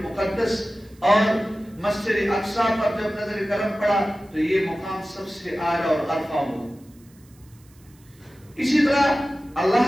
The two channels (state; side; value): noise; right; hiss, 30 dB below the sound